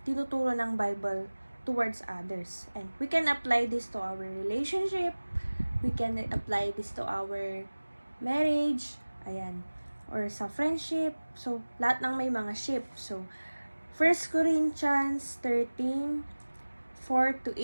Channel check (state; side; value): inverted; both; correlation -1.00